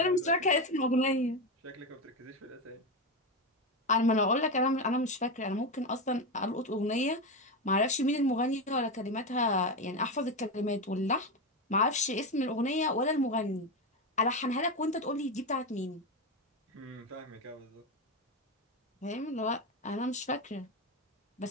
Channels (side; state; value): both; normal; correlation 0.14